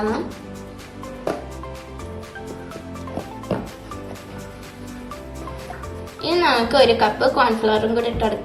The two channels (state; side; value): identical; both; correlation 1.00